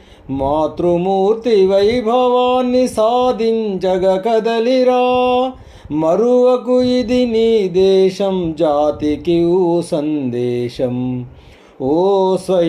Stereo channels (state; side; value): identical; both; correlation 1.00